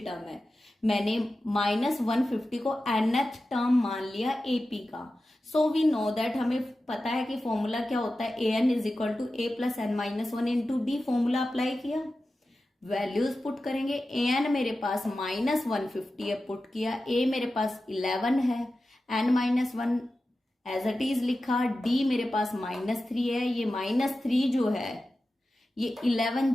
है, मैंने -150 को nth टर्म मान लिया एपी का। सो वी नो दैट, हमें पता है कि फॉर्मूला क्या होता है, an is equal to a plus n minus 1 into D. Formula apply किया, वैल्यूज पुट करेंगे। an मेरे पास -150 है, पुट किया। a मेरे पास 11 है, n minus 1 as it is लिखा। d मेरे पास -3 है, ये -3 जो है ये 11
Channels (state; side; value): normal; both; correlation 0.93